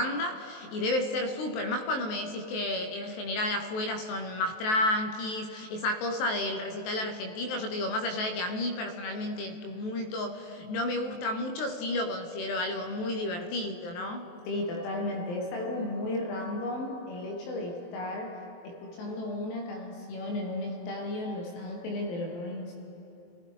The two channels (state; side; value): late; right; 23 ms